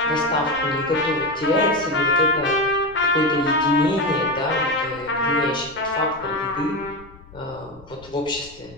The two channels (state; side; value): noise; left; rumble, 22 dB below the sound